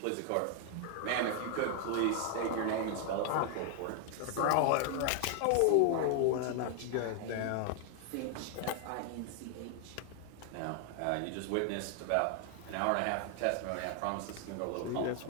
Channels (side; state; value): both; different; correlation 0.00